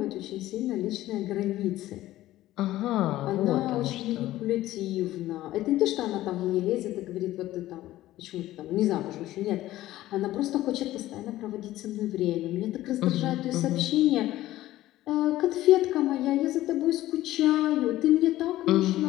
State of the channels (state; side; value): quieter; right; 15.2 dB